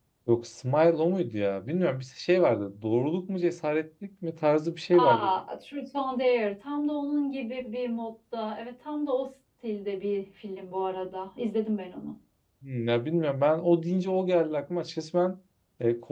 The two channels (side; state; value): both; identical; correlation 1.00